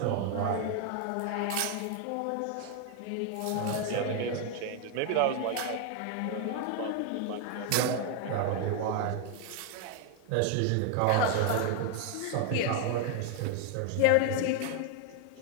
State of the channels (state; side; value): different; both; correlation 0.01